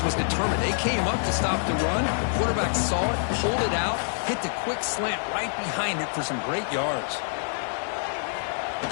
was determined. They came up to stop the run. The quarterback saw it, pulled it out, hit the quick slant right behind it for some great yards.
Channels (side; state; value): right; silent; digital silence